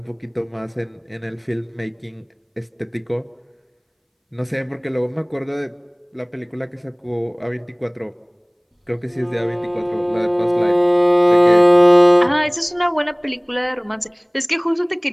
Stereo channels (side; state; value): both; identical; correlation 1.00